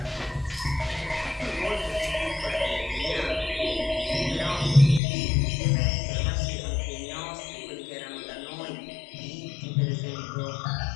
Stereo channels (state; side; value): drops out; right; at 5.0 s